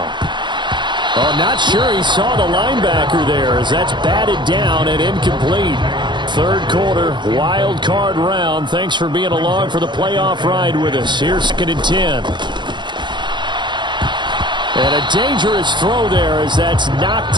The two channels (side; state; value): left; late; 0.22 ms